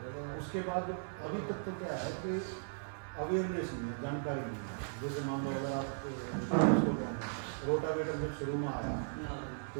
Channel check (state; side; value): silent; left; 53 dB below the other